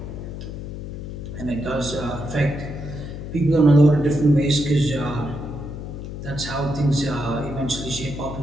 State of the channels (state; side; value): noise; left; hum, 8 dB below the sound